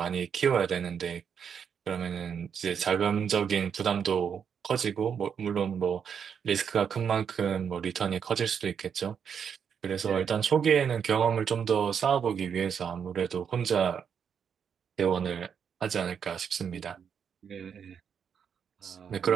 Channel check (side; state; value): left; quieter; 7.3 dB